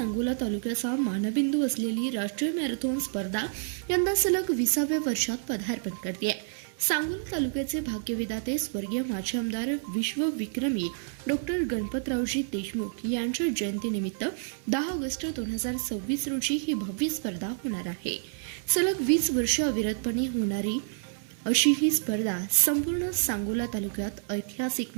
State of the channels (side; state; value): left; silent; 59 dB below the other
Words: तालुक्याचा मानबिंदू असलेली राष्ट्रीय मॅरेथॉन स्पर्धा यंदा सलग 20व्या वर्षात पदार्पण करते. सांगोला तालुक्याचे भाग्यविधाते स्वर्गीय माजी आमदार विश्वविक्रमी डॉक्टर गणपतरावजी देशमुख यांच्या जयंतीनिमित्त 10 ऑगस्ट 2026 रोजी ही भव्य स्पर्धा होणार आहे. सलग 20 वर्ष अविरतपणे होणारी अशी ही स्पर्धा संपूर्ण सांगोला तालुक्यात ऐतिहासिक